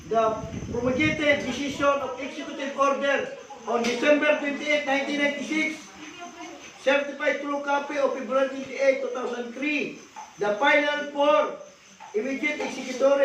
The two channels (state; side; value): identical; both; correlation 1.00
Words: The promulgated decision of executive order on December 28, 1996, certified true copy of February 28, 2003. The final 4 immediate